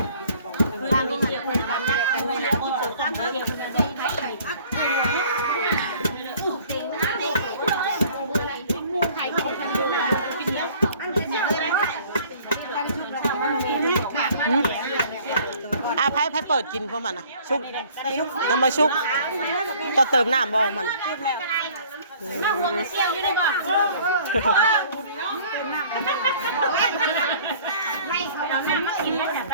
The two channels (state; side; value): inverted; both; correlation -0.53